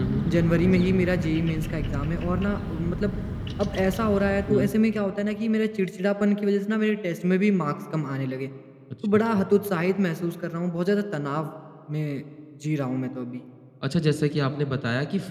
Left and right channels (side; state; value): both; identical; correlation 1.00